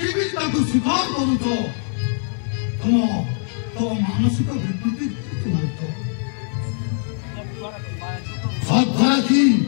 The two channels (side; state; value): right; silent; 58 dB below the other